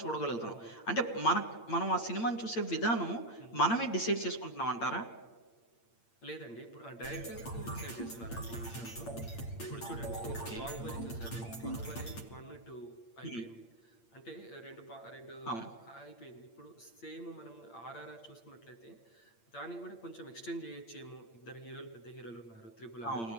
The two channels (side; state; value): right; late; 8.7 ms